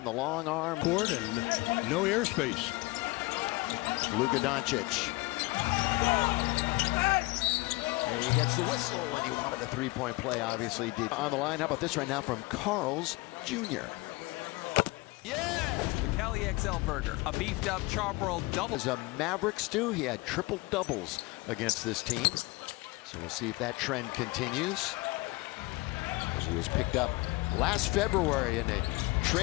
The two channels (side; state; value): right; quieter; 22.6 dB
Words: the long arm. Court and no airspace. Luka Doncic. And he gets the whistle, and he wanted a 3-point play, obviously did. On the line, how about this right now from Carl's Jr. Yeah! The Cali XL Burger, a beefed up charbroiled double. As a Maverick stew, he had triple doubles against this team. So we'll see if that trend continues. As he was picked up last February in a